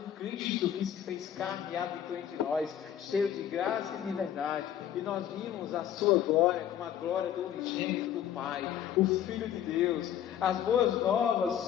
que se fez carne e habitou entre nós, cheio de graça e de verdade. E nós vimos a sua glória como a glória do unigênito do Pai, o Filho de Deus. As boas novas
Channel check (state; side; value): quieter; right; 10.3 dB